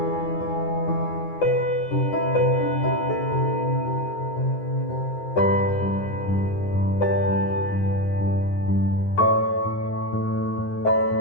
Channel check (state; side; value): late; right; 9.7 ms